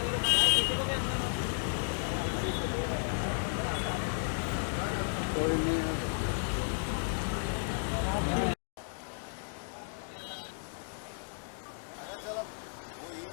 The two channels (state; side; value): silent; right; digital silence